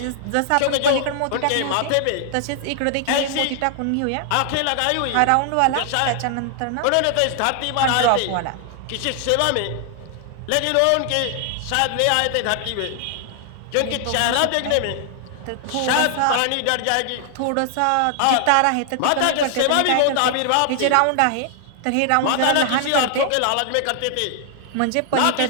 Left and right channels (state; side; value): different; both; correlation 0.00